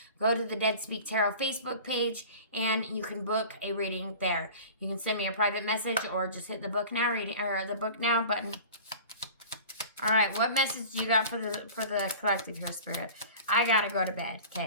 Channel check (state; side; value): inverted; both; correlation -0.39